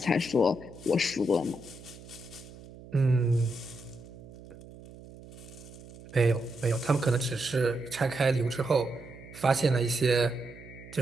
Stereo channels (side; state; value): right; noise; hum, 18 dB below the sound